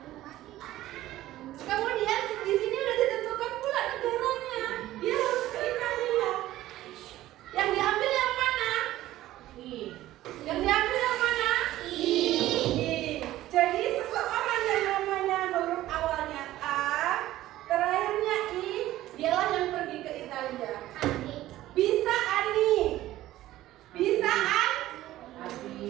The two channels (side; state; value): left; quieter; 15.0 dB